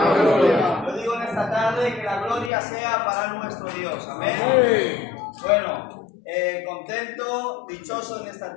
¡Gloria! yo digo en esta tarde que la gloria sea para nuestro Dios, amén. ¡Amén! Bueno, contento, dichoso en esta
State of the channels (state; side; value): drops out; right; at 2.5 s